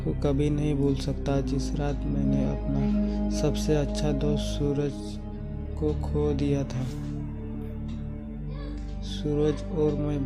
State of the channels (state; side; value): identical; both; correlation 1.00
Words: को कभी नहीं भूल सकता जिस रात मैंने अपना सबसे अच्छा दोस्त सूरज को खो दिया था। सूरज और मैं